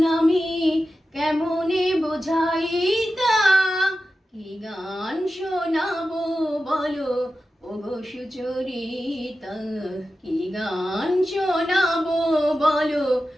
আমি কেমনে বোঝাইতা। কি গান শোনাবো বলো ওগো সুচরিতা, কি গান শোনাবো বলো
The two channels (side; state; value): both; normal; correlation 0.92